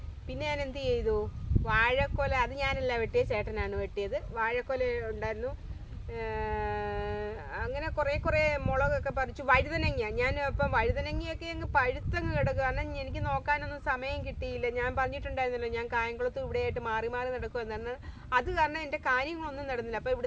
ഞാൻ എന്ത് ചെയ്തു, വാഴക്കൊല അത് ഞാനല്ല വെട്ടിയത്, ചേട്ടനാണ് വെട്ടിയത്. വാഴക്കൊല ഉണ്ടായിരുന്നു. അങ്ങനെ കുറേ മുളകൊക്കെ പറിച്ചു. വഴുതനങ്ങ ഞാൻ ഇപ്പം വഴുതനങ്ങയൊക്കെ അങ്ങ് പഴുത്തങ്ങ് കിടക്കുക. കാരണം എനിക്ക് നോക്കാനൊന്നും സമയം കിട്ടിയില്ല. ഞാൻ പറഞ്ഞിട്ടുണ്ടായിരുന്നല്ലോ, ഞാൻ കായംകുളത്ത് ഇവിടെയായിട്ട് മാറി നടക്കുമെന്നാണ്. അത് കാരണം എൻ്റെ കാര്യങ്ങളൊന്നും നടന്നില്ല. അപ്പോൾ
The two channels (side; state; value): both; identical; correlation 1.00